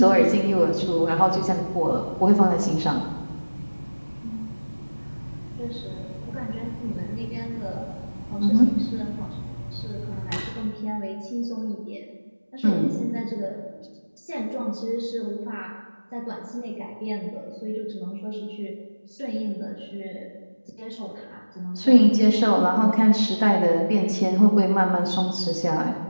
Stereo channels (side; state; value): both; inverted; correlation -1.00